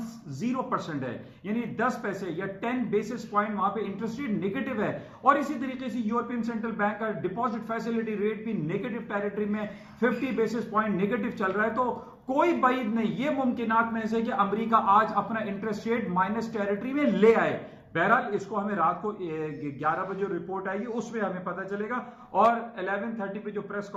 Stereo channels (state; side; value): identical; both; correlation 1.00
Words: है, यानी 10 पैसे या 10 बेसिस पॉइंट वहां पे इंटरेस्ट रेट नेगेटिव है। और इसी तरीके से यूरोपियन सेंट्रल बैंक का डिपॉजिट फैसिलिटी रेट भी नेगेटिव टेरिटरी में 50 बेसिस पॉइंट नेगेटिव चल रहा है। तो कोई बाइद नहीं, ये मुमकिनात में से कि अमेरिका आज अपना इंटरेस्ट रेट माइनस टेरिटरी में ले आए। बहरहाल इसको हमें रात को 11 बजे रिपोर्ट आएगी उसमें हमें पता चलेगा, और 11:30 पे जो प्रेस